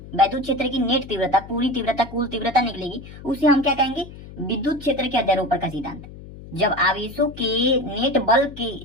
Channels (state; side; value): noise; left; hum, 16 dB below the sound